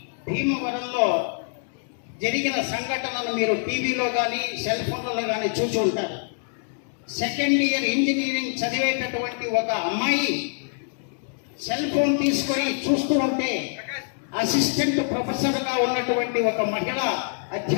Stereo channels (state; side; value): silent; right; 62 dB below the other